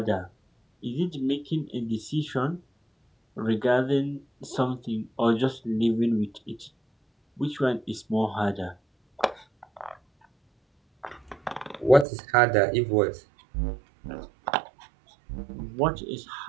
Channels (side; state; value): left; drops out; at 12.1 s